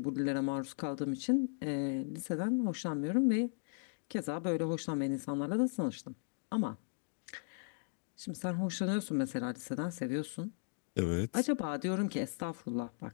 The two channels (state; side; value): silent; right; digital silence